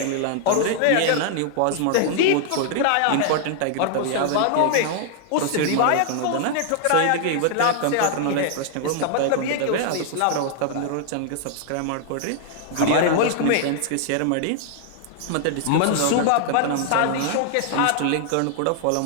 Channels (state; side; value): different; both; correlation -0.01